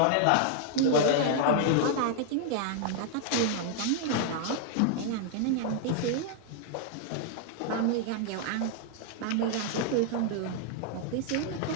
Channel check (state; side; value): different; both; correlation 0.00